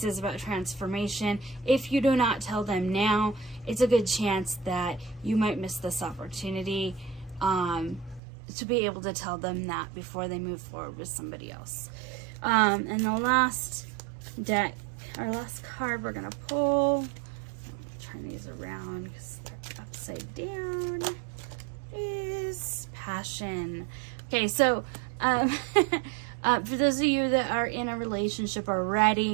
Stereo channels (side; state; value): left; drops out; at 8.2 s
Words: is about transformation. If you do not tell them now, it's a good chance that you might miss this opportunity to be able to tell them that before they move forward with somebody else. And the last deck, our last card we're going to pull, turn these around because they're upside down, is Passion. Okay, so for those of you that are in a relationship